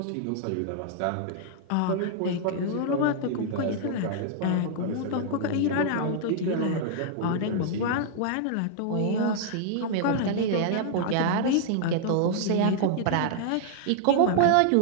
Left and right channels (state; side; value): different; both; correlation -0.01